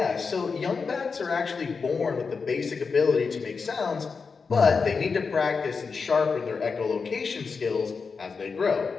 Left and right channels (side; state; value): right; quieter; 5.1 dB